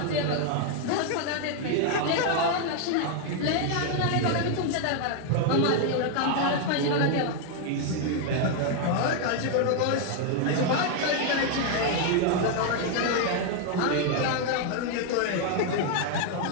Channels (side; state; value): both; different; correlation 0.00